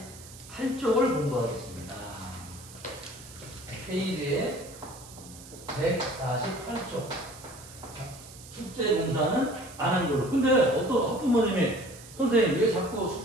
공부하겠습니다. 페이지에 148쪽. 숙제 공사는 안 한 걸로. 근데 어떤 학부모님이 선생님 왜 자꾸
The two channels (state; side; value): noise; right; hiss, 18 dB below the sound